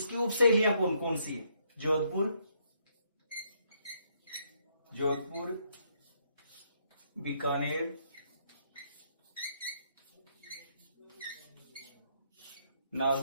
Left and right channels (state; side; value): inverted; both; correlation -0.72